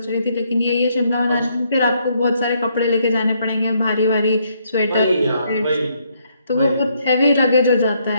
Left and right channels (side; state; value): both; inverted; correlation -0.72